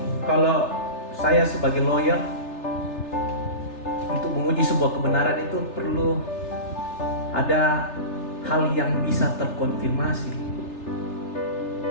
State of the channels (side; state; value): right; late; 3.3 ms